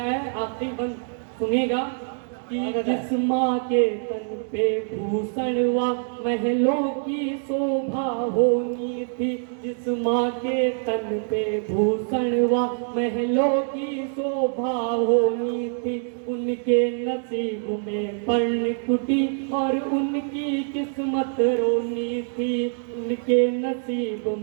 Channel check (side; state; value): left; silent; 62 dB below the other